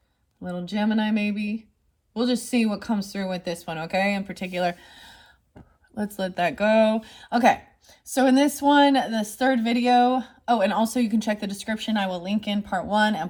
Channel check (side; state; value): both; identical; correlation 1.00